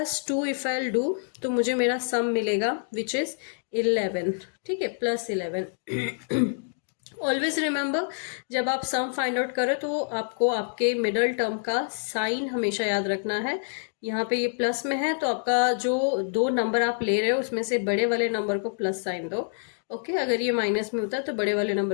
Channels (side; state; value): right; silent; digital silence